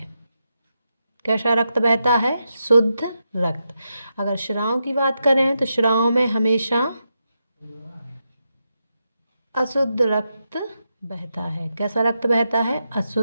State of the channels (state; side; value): inverted; both; correlation -0.86